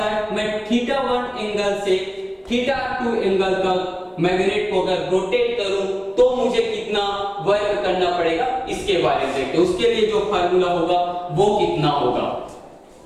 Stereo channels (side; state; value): both; identical; correlation 1.00